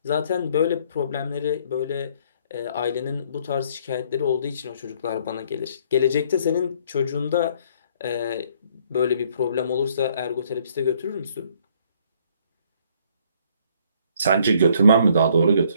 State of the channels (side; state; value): both; inverted; correlation -0.63